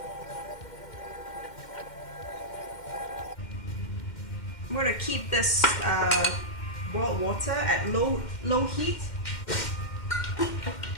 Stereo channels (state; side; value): late; right; 2.1 ms